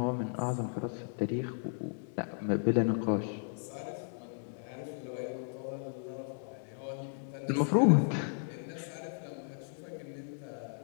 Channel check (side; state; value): right; silent; digital silence